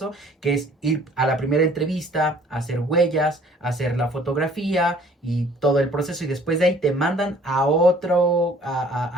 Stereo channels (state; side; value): normal; both; correlation 0.55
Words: que es ir a la primera entrevista, hacer huellas, hacer la fotografía y todo el proceso, y después de ahí te mandan a